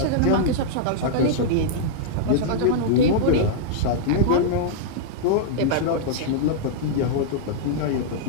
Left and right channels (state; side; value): different; both; correlation -0.02